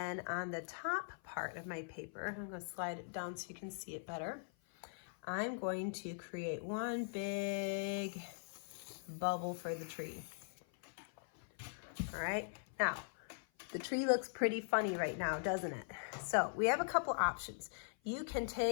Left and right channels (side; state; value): right; silent; 50 dB below the other